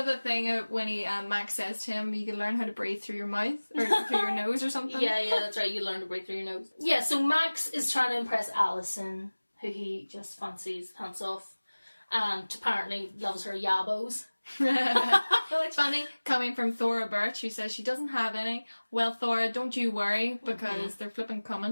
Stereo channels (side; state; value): both; inverted; correlation -1.00